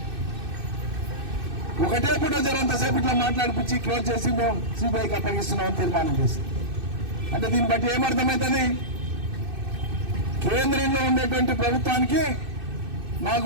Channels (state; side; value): late; left; 2.6 ms